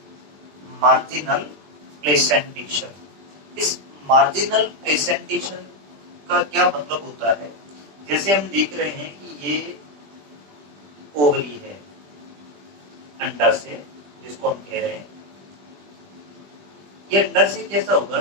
Marginal placentation. इस मार्जिनल प्लेसेंटेशन का क्या मतलब होता है? जैसे हम देख रहे हैं कि ये ओवरी है अंडाशय जिसको हम कह रहे हैं, ये अंडाशय कैसा होगा?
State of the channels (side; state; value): left; late; 20 ms